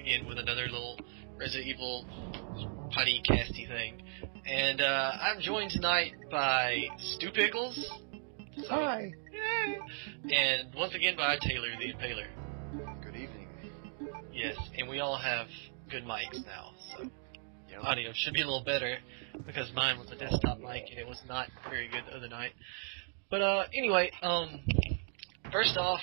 with another little Resident Evil podcasty thing. And I'm joined tonight by Stu Pickles. Hi. Yay. And once again by Taylor the Impaler. Good evening. Yes, and we all have good mics now, so Yep. audio should be a little better, because mine was a desktop mic and it was not very good the other night. But anyway, first off,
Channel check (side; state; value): left; silent; 54 dB below the other